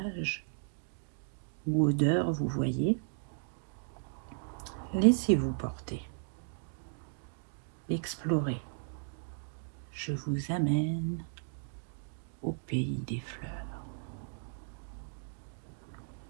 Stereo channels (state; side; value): silent; left; digital silence